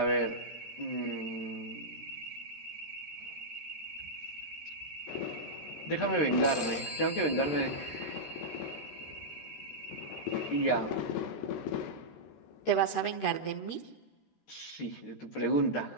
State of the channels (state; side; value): late; right; 13 ms